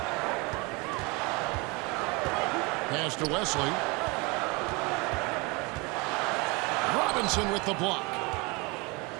Pass to Wesley. Robinson with the block.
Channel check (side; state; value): left; quieter; 27.5 dB